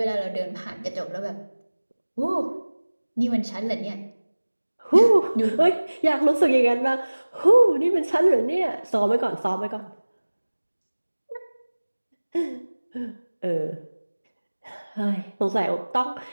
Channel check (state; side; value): inverted; both; correlation -1.00